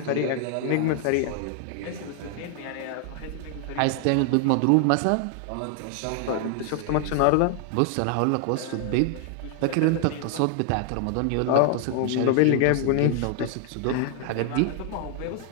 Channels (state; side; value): different; both; correlation 0.00